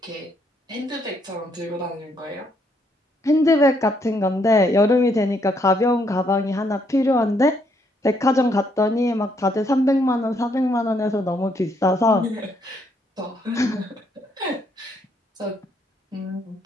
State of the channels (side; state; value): both; normal; correlation 0.72